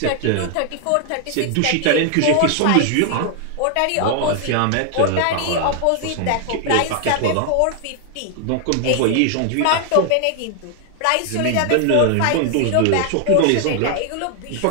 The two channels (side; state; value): both; different; correlation 0.00